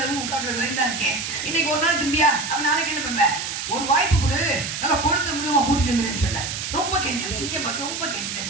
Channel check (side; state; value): right; noise; hiss, 5 dB below the sound